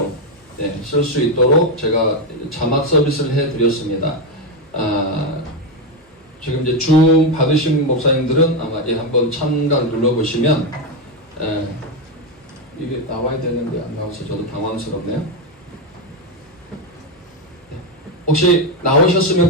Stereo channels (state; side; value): normal; both; correlation 0.08